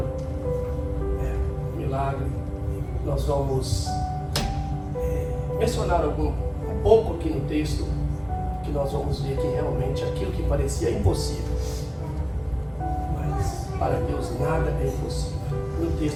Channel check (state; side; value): identical; both; correlation 1.00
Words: é um milagre. Nós vamos mencionar um pouco aqui no texto, que nós vamos ver que realmente aquilo que parecia impossível, mas para Deus nada é impossível. No